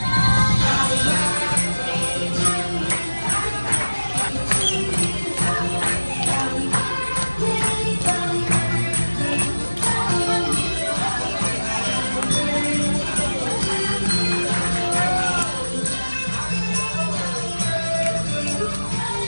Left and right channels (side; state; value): both; inverted; correlation -1.00